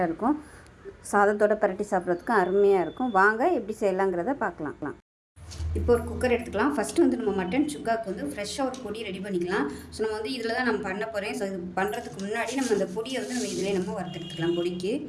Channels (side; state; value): both; identical; correlation 1.00